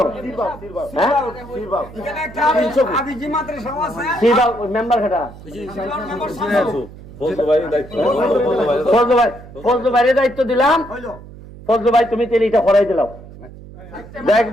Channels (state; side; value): noise; right; hum, 17 dB below the sound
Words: মেম্বার খেটা ফজলু ভাইয়ের দায়িত্ব দিলাম ফজলু ভাই তুমি তেল এটা করাই দিলাম দেখ